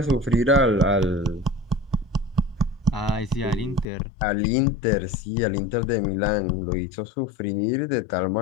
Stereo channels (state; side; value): drops out; right; at 3.9 s